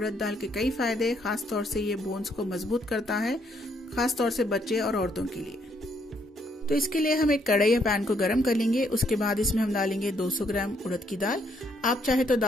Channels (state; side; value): normal; both; correlation 0.71